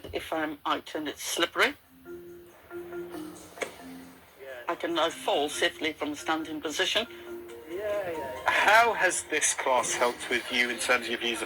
if I'm out and it's slippery. I can now fall safely from a standing position. How has this class helped with you in terms of your views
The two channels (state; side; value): identical; both; correlation 1.00